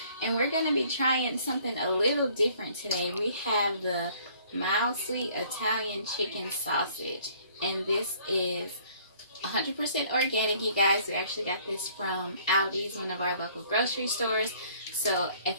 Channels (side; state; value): both; inverted; correlation -0.57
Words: And we're going to be trying something a little different today. We have the mild sweet Italian chicken sausage, and this is 100% organic, you guys. We actually got this from Aldi's, one of our local grocery stores. So